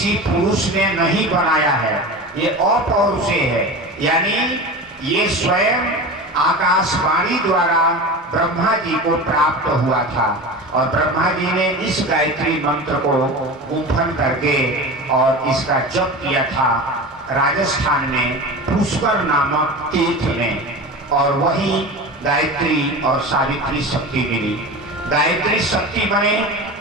पुरुष ने नहीं बनाया है, ये अपौरुषेय है, यानी ये स्वयं आकाशवाणी द्वारा ब्रह्मा जी को प्राप्त हुआ था और ब्रह्मा जी ने इस गायत्री मंत्र को गुंफन करके और इसका जप किया था राजस्थान में पुष्कर नामक तीर्थ में, और वही गायत्री और सावित्री शक्ति मिली। गायत्री शक्ति बने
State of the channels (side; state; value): both; normal; correlation 0.30